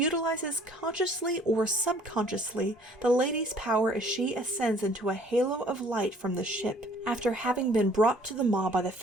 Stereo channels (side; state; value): both; normal; correlation 0.56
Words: consciously or subconsciously the lady's power as she ascends into a halo of light from the ship after having been brought to the maw by the